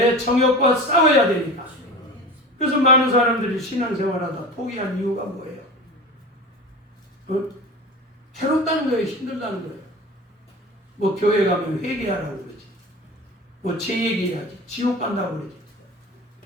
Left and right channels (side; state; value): both; normal; correlation 0.33